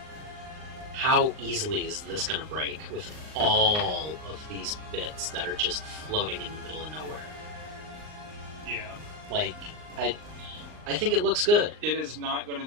how easily is this going to break with all of these bits that are just floating in the middle of nowhere? Yeah. Like, I think it looks good. It is not going to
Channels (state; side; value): late; left; 39 ms